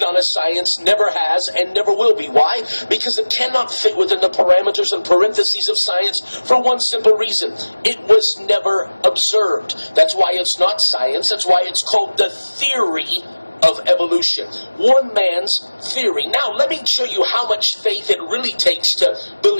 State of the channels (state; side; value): inverted; both; correlation -1.00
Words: a science, never has, and never will be. Why? Because it cannot fit within the parameters and parentheses of science for one simple reason. It was never observed. That's why it's not science. That's why it's called the theory of evolution. One man's theory. Now, let me show you how much faith it really takes to